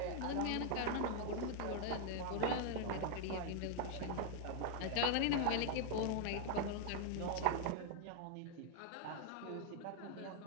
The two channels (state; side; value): different; both; correlation 0.00